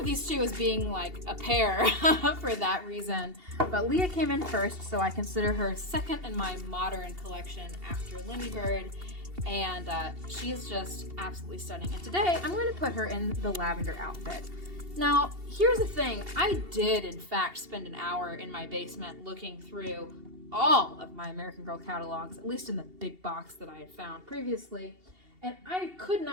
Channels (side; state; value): left; late; 2.8 ms